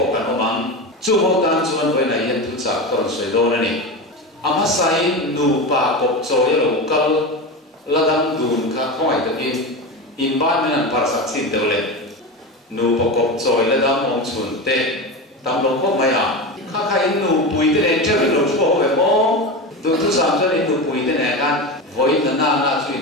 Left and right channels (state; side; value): normal; both; correlation 0.22